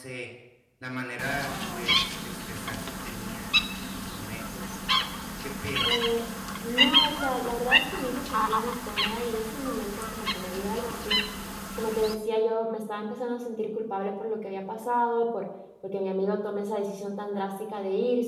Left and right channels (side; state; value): both; identical; correlation 1.00